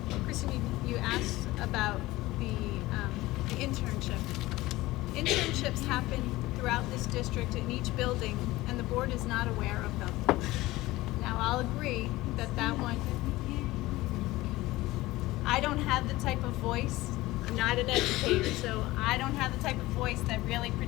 Kristen, you asked about the internship. Internships happen throughout this district in each building, and the board is not aware of them. Now, I'll agree that that one, I don't have the type of voice, I'm not an educator, so I don't have the type of voice that really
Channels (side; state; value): right; quieter; 18.6 dB